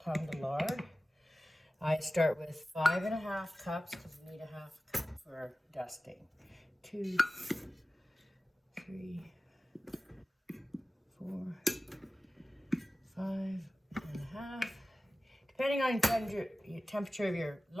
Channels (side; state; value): both; normal; correlation 0.96